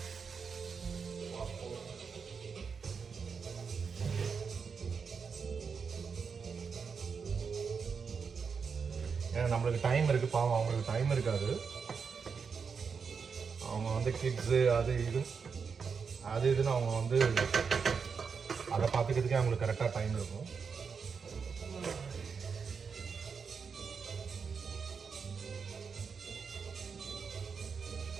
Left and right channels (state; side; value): quieter; left; 5.8 dB